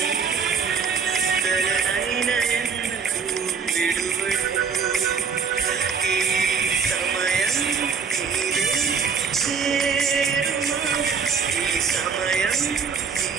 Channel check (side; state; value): left; quieter; 6.0 dB